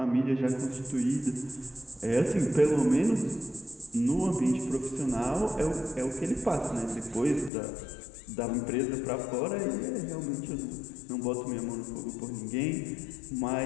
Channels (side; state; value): right; drops out; at 7.5 s